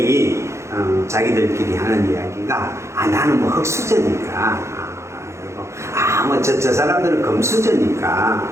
자기들끼리 하는 이야기가 나는 뭐 흙수저니까 저 사람들은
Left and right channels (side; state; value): left; late; 0.14 ms